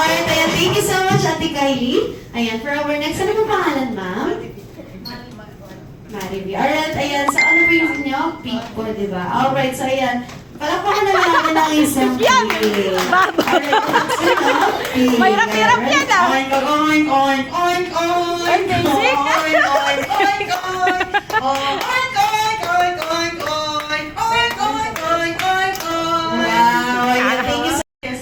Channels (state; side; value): identical; both; correlation 1.00